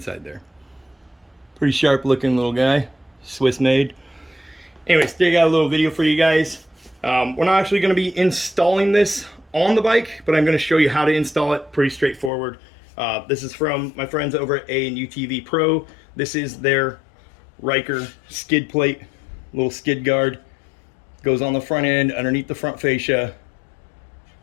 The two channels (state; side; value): drops out; right; at 12.3 s